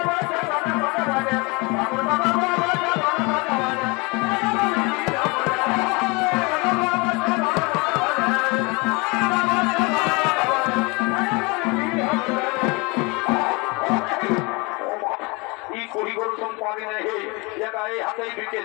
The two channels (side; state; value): right; quieter; 27.6 dB